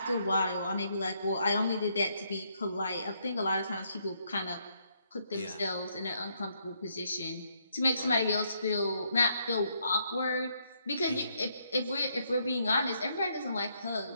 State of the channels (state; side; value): inverted; both; correlation -0.74